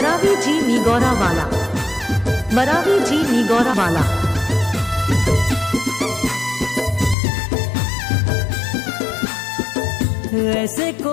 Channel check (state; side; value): drops out; right; at 7.2 s